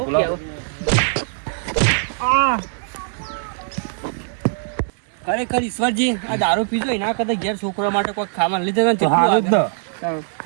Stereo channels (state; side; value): silent; left; digital silence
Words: ખરેખર ઈશ્વરજી આ દારૂ પીજો એના કરતા ઘેર છોકરા માટે કોઈ ખાવાનું લીધે તો હારું